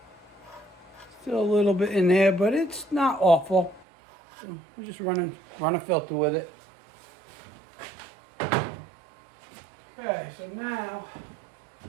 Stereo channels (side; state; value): left; drops out; at 3.9 s